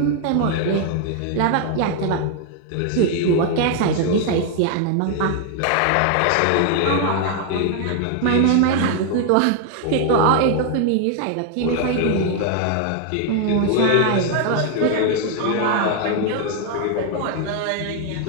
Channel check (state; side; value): different; both; correlation 0.00